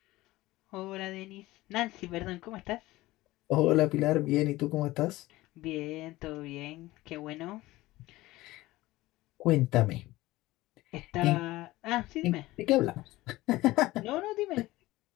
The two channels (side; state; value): right; quieter; 18.3 dB